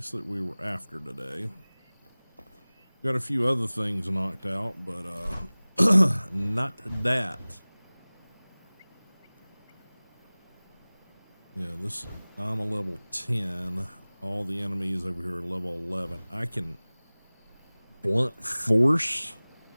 that we were after today. Got a few other things knocked out, but not that. Yeah, I'm a level 10. All the enemies over here are level 11. I can blunt force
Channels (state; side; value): inverted; both; correlation -1.00